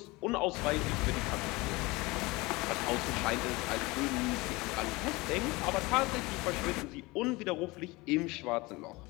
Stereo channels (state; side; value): quieter; right; 23.0 dB